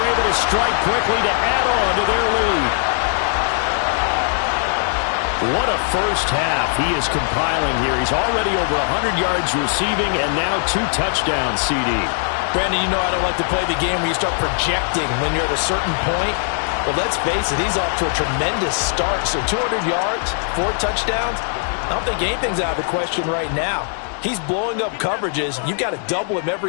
able to strike quickly to add on to their lead. What a first half he is compiling here. He's already over 100 yards receiving and now 2 touchdowns, CD. Brandon, you know I don't like to play the game where you start projecting when you're at a certain point. But let's face it, he's off to a tremendous start. So 200 yards, 4 touchdowns. I don't think anything's out of the question right now. He's blowing up coverages. You've got to double him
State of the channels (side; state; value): right; silent; digital silence